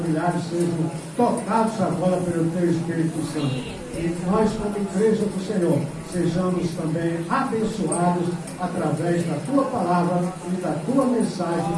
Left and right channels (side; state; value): both; identical; correlation 1.00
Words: sejam tocados agora pelo teu Espírito Santo. E nós, como igreja do Senhor, sejamos também abençoados através da tua palavra e da tua